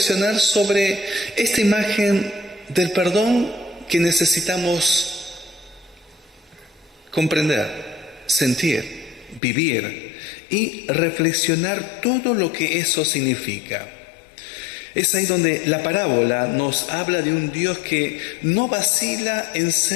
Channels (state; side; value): drops out; right; at 9.4 s